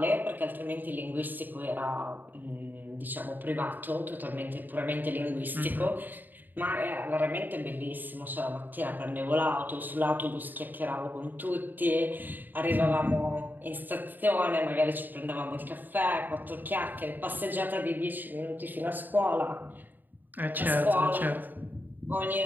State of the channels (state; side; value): late; left; 0.089 ms